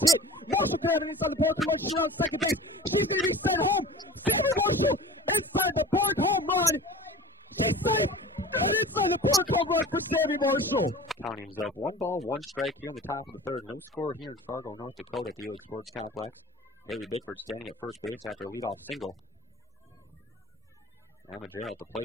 hit. Marshall could have it inside the park run. She's around second base. She's going to be sent home. Sammy Marshall inside the park home run. She's safe. And inside the park home run for Sammy Marshall. Counting is up 1 ball, 1 strike here in the top of the third. No score here in Fargo, North Dakota at the Elig Sports Complex. Haley Bickford standing at first base after a leadoff single. Emma Gerald at the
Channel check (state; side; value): normal; both; correlation 0.39